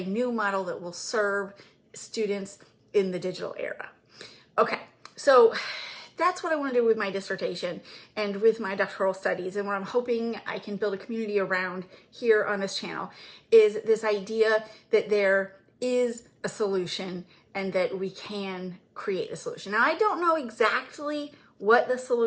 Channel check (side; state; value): both; identical; correlation 1.00